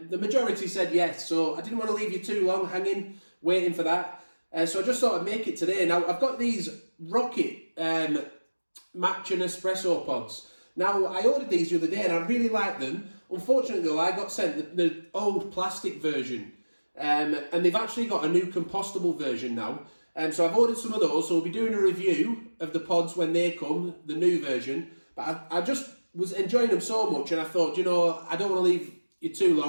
the majority said yes, so I didn't want to leave you too long hanging, waiting for that. So I just thought I'd make it today. Now, I've got these Rocket Matcha Nespresso pods. Now, I ordered these the other day and I really like them. Unfortunately, though, I got sent the old plastic version. And they've actually got a new compostable version now. So I've ordered some of those, so we'll be doing a review of the pods when they come, the new version. But I just was enjoying them so much, and I thought, you know, I don't want to leave you too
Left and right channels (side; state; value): both; inverted; correlation -1.00